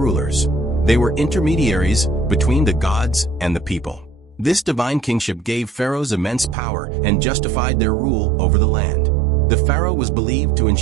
They were intermediaries between the gods and the people. This divine kingship gave pharaohs immense power and justified their rule over the land. The pharaoh was believed to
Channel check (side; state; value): left; drops out; at 6.6 s